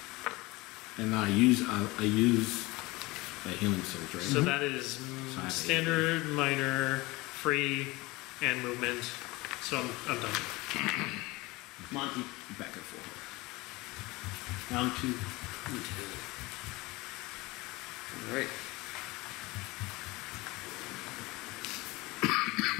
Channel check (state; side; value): quieter; right; 22.1 dB